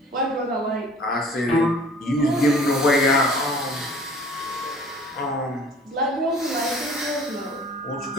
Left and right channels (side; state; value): both; normal; correlation 0.49